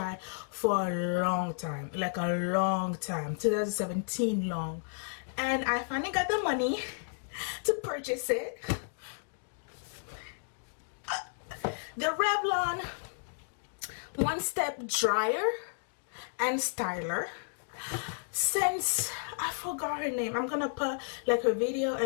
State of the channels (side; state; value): right; silent; digital silence